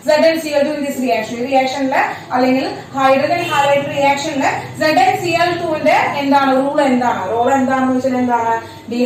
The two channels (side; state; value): both; identical; correlation 1.00